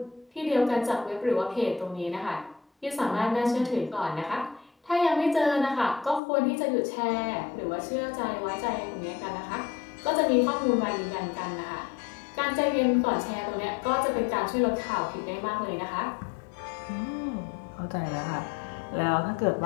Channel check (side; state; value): right; drops out; at 6.2 s